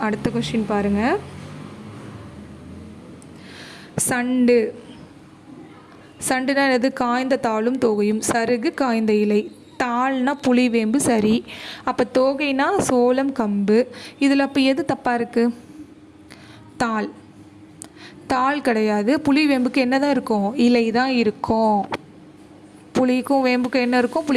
அடுத்த கொஸ்டின் பாருங்கள். சண்டு. சண்டுனா என்னது? காய்ந்த தாளும் தோகையும். சருகு, காய்ந்த இலை. தாள்னா புளி, வேம்பு. சரி. அப்போ தோகைனா சோளம், கம்பு. இதில் அப்போ எது தப்பாக இருக்குது? தாள். தாள் கிடையாது. புளி, வேம்புக்கு என்ன தான் இருக்கும்? இலை தான் இருக்கும். புளிக்கும் வேம்புக்கும் என்ன இருக்கும்?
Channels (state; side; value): identical; both; correlation 1.00